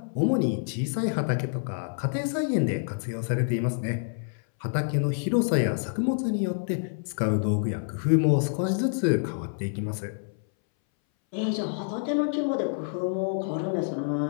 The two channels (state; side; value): silent; right; 60 dB below the other